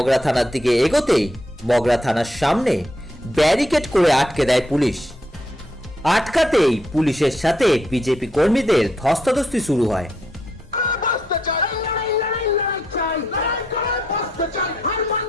থানার দিকে এগোতেই মগরা থানার সামনে ব্যারিকেড করে আটকে দেয় পুলিশ। আটকাতেই পুলিশের সাথে বিজেপি কর্মীদের ধস্তাধস্তি শুরু হয়।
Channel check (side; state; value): both; normal; correlation 0.75